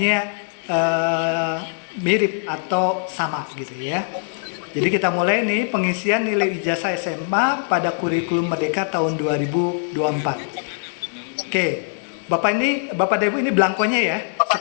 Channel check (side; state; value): right; silent; digital silence